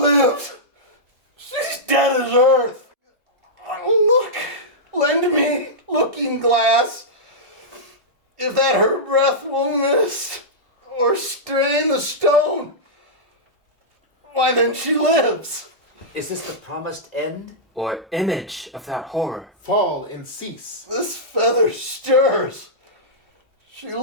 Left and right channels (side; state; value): both; normal; correlation -0.12